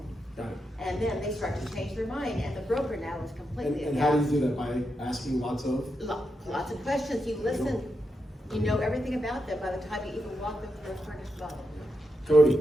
Got it. And then they start to change their mind, and the broker now is completely And how do aghast. you do that? By asking lots of? Lots of questions. You listen. You know everything about them by the time you even walk them through their furnished dwelling. Cody,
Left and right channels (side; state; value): both; normal; correlation 0.85